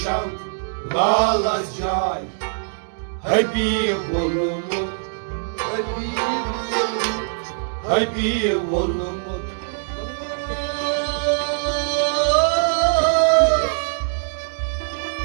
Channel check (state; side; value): silent; left; digital silence